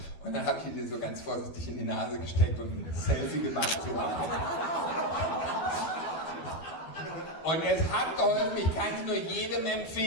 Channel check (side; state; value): right; late; 12 ms